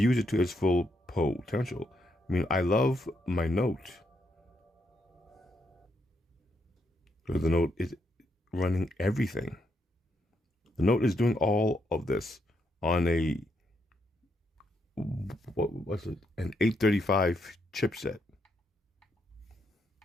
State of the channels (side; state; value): both; normal; correlation 0.78